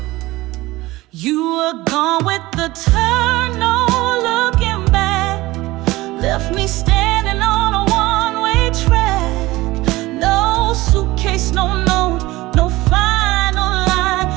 You were gone with the turn, no looking back, left me standing on a one-way track. No suitcase, no note, no final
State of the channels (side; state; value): left; quieter; 19.2 dB